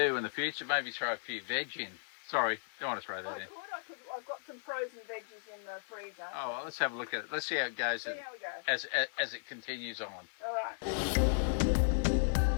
in the future, maybe throw a few veg in. Sorry, don't want to throw that in. I've got some frozen veggies in the freezer. Oh, well, let's have a look at it. Let's see how it goes, See how we go. as it continues on. All right.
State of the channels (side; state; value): right; silent; digital silence